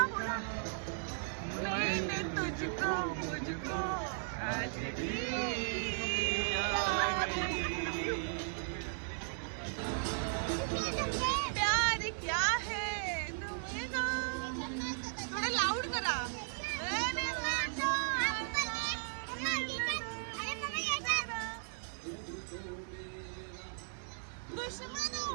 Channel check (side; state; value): left; silent; digital silence